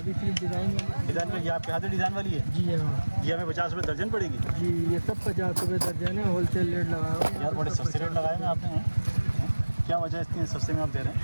सिर्फ डिज़ाइन वाली। डिज़ाइन वाली आपके हाथ में डिज़ाइन वाली है? जी हाँ ये हमें 50 रुपये दर्जन पड़ेगी? जी, ये सब 50 रुपये दर्जन है, होलसेल रेट लगा हुआ है। यार बड़े सस्ते रेट लगाए हैं आपने, हैं? क्या वजह है इतने सस्ते में आप दे रहे हैं?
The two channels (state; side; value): inverted; both; correlation -1.00